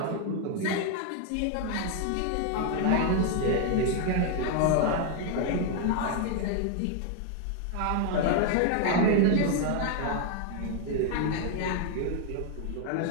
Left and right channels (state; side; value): different; both; correlation 0.00